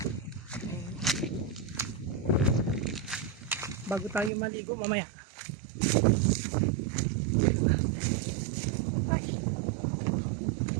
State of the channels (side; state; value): left; drops out; at 4.3 s